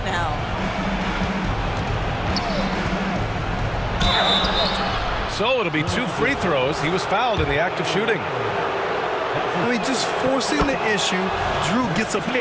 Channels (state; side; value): identical; both; correlation 1.00